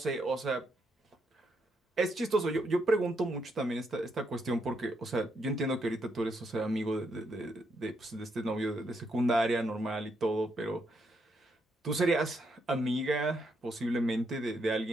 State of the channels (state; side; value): normal; both; correlation 0.78